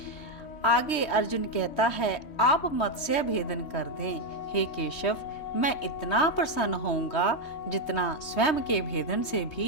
आगे अर्जुन कहता है, आप मत्स्य भेदन कर दें हे केशव, मैं इतना प्रसन्न होऊंगा जितना स्वयं के भेदन से भी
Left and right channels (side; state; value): right; late; 3.2 ms